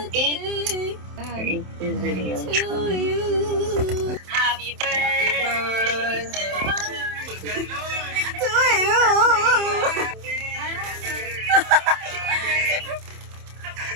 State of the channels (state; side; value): late; left; 27 ms